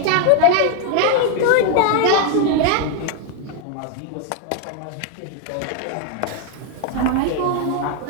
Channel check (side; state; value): both; different; correlation 0.00